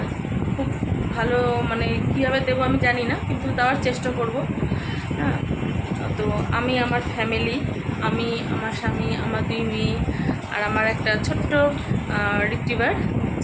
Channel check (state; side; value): identical; both; correlation 1.00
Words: খুব ভালো মানে কীভাবে দেবো আমি জানি না, কিন্তু দেওয়ার চেষ্টা করব। হ্যাঁ, তো আমি আমার ফ্যামিলি, আমি আমার স্বামী, আমার 2 মেয়ে আর আমার একটা ছোট্ট রিট্রিভার